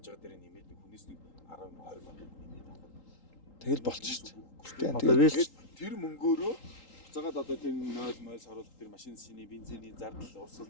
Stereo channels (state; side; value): late; right; 3.8 ms